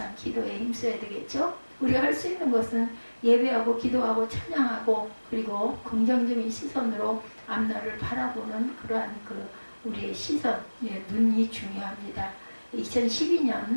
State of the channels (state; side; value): inverted; both; correlation -1.00